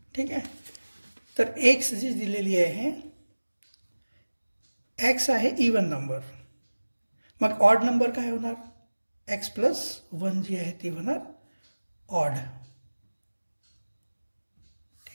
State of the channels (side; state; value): both; inverted; correlation -1.00